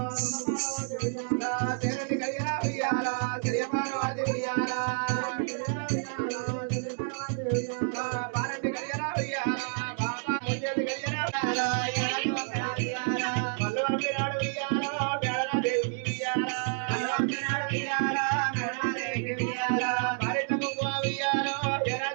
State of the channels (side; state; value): left; silent; 58 dB below the other